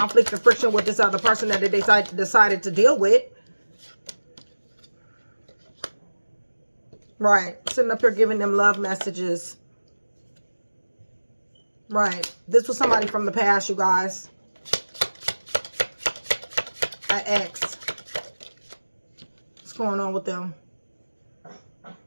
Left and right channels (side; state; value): both; inverted; correlation -1.00